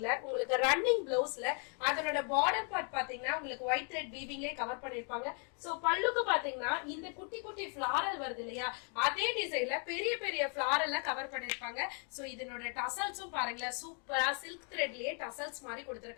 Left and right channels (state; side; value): quieter; right; 39.5 dB